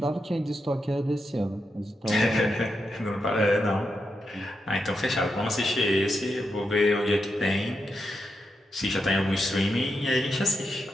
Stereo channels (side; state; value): both; normal; correlation 0.85